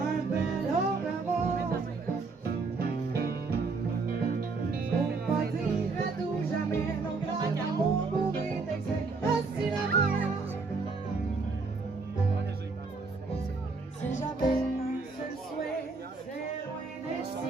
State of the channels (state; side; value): quieter; left; 4.2 dB